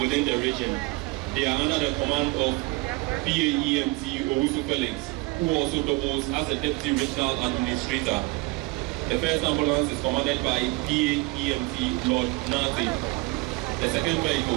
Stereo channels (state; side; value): quieter; left; 23.7 dB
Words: within the region. They are under the command of PAEMT Owusu Felix, who also doubles as a Deputy Regional Administrator. The first ambulance is commanded by PAEMT Lord Nate. The second